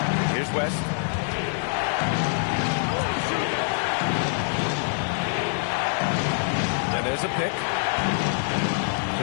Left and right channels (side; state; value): right; silent; digital silence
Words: Here's West. And there's a pick.